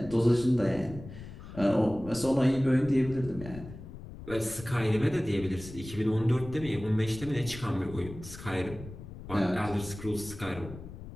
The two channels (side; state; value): left; noise; rumble, 13 dB below the sound